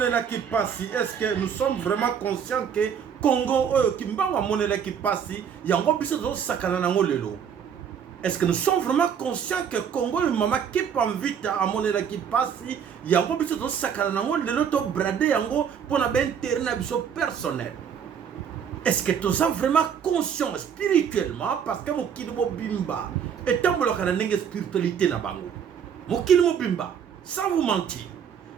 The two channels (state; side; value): quieter; left; 7.8 dB